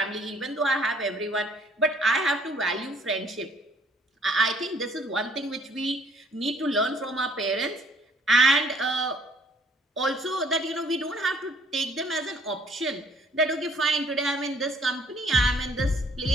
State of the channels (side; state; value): both; normal; correlation 0.61